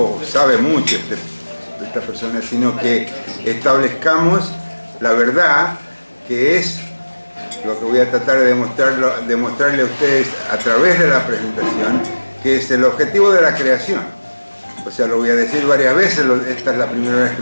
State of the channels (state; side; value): inverted; both; correlation -1.00